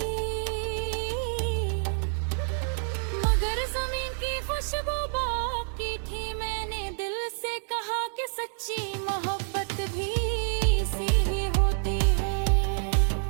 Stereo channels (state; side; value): silent; left; digital silence